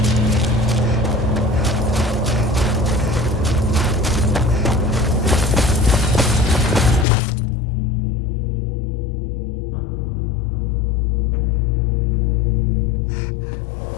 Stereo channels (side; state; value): right; drops out; at 7.1 s